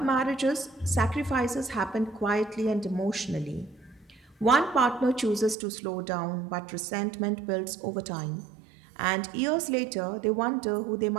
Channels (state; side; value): drops out; left; at 5.6 s